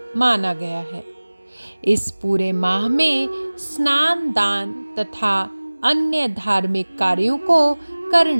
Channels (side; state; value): both; inverted; correlation -1.00